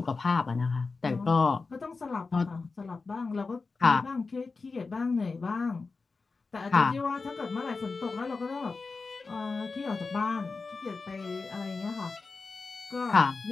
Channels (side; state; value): right; quieter; 4.2 dB